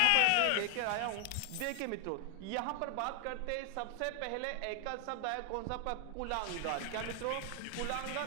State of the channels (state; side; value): different; both; correlation 0.00